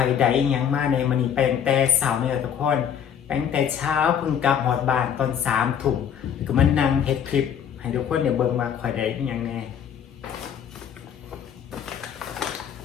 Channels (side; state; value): right; quieter; 8.5 dB